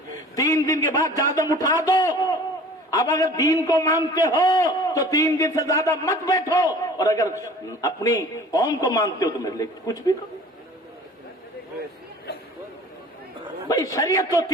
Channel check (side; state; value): both; normal; correlation 0.46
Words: 3 دن کے بعد جادم اٹھا دو. اب اگر دین کو مانتے ہو تو 3 دن سے زیادہ مت بیٹھو، اور اگر اپنی قوم کو مانتے ہو تو میرے لیے کچھ بھی کرو. بھائی شریعت تو